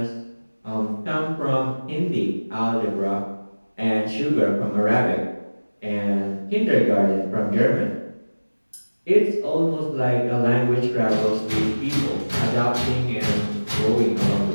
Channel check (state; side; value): inverted; both; correlation -1.00